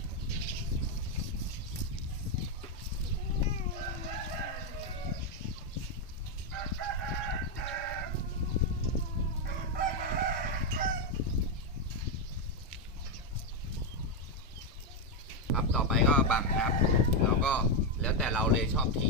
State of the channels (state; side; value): normal; both; correlation 0.04